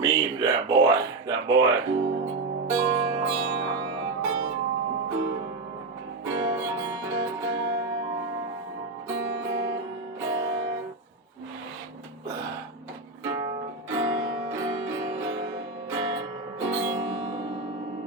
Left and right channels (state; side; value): quieter; left; 3.5 dB